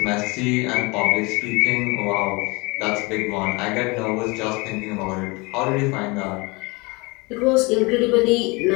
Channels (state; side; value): quieter; right; 26.1 dB